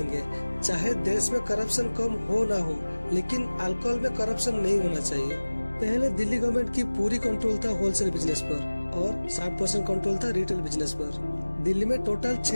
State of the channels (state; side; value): inverted; both; correlation -1.00